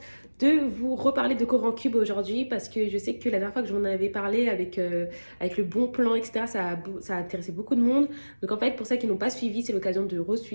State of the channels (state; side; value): inverted; both; correlation -1.00